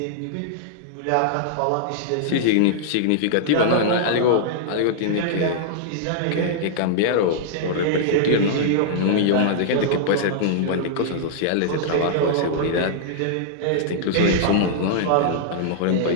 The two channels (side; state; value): both; different; correlation -0.02